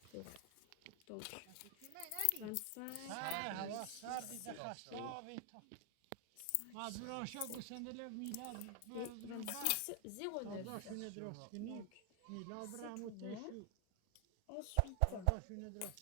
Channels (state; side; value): different; both; correlation 0.00